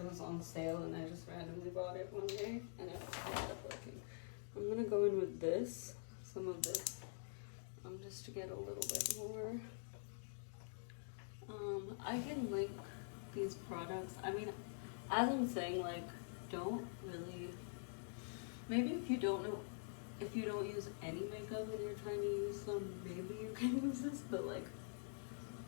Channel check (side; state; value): right; silent; digital silence